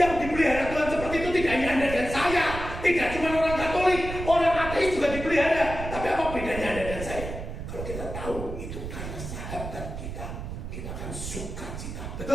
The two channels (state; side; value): noise; right; rumble, 8 dB below the sound